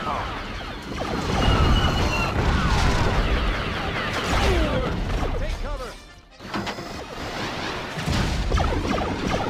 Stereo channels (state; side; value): identical; both; correlation 1.00